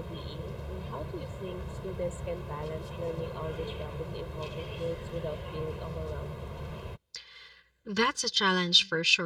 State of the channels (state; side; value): identical; both; correlation 1.00